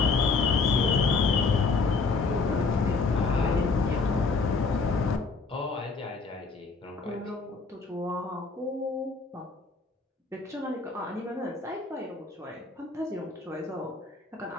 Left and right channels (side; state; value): right; quieter; 4.2 dB